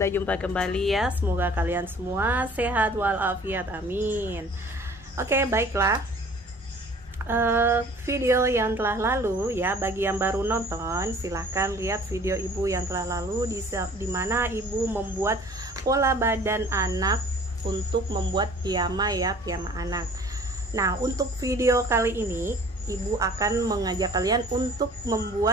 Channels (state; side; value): normal; both; correlation 0.50